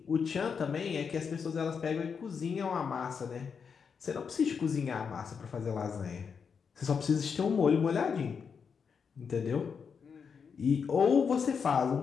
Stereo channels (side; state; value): right; quieter; 6.2 dB